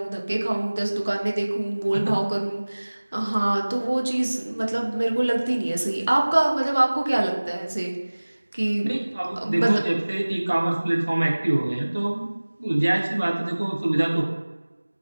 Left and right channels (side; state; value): both; inverted; correlation -1.00